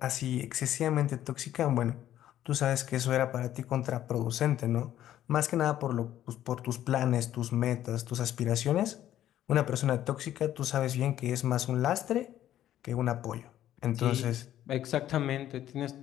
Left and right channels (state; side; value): quieter; right; 12.1 dB